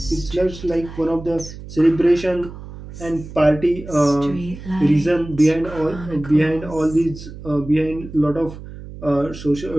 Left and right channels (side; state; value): right; noise; hum, 13 dB below the sound